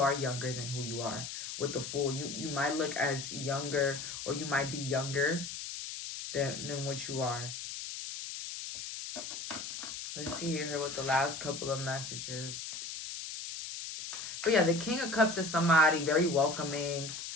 younger than who you are. With the Fool, you might look as younger, or you might be younger than what you are. Let's see here with the last couple of messages. But yeah, the King of Cups is somebody very welcoming,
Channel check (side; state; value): left; noise; hiss, 7 dB below the sound